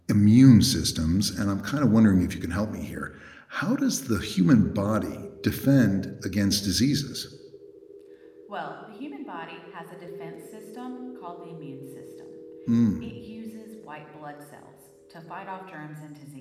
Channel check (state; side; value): identical; both; correlation 1.00